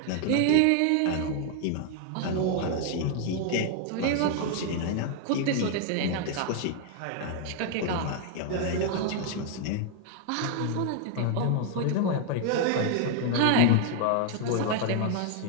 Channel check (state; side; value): different; both; correlation 0.00